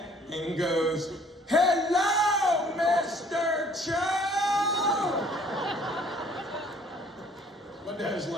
and goes, hello, Mr. Cho! My dad's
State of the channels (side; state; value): both; normal; correlation 0.57